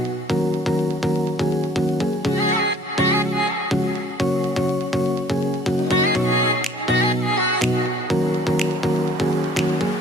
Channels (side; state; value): both; normal; correlation 0.56